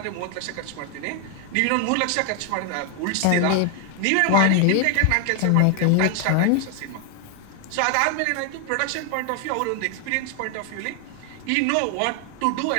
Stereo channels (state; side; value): different; both; correlation 0.00